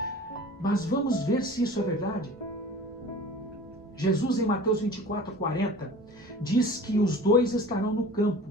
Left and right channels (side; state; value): both; normal; correlation 0.42